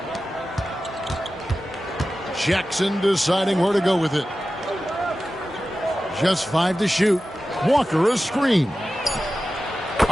Jackson deciding where to go with it. Just 5 to shoot. Walker a screen.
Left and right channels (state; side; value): normal; both; correlation 0.94